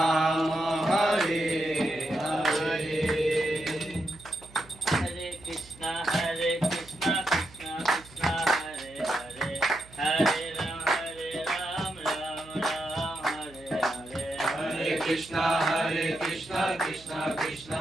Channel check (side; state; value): right; noise; hum, 22 dB below the sound